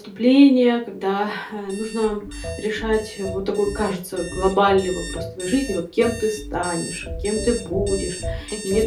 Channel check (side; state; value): both; identical; correlation 1.00